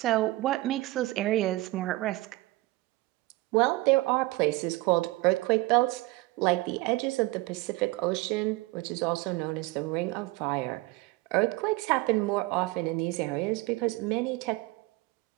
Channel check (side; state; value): left; quieter; 20.6 dB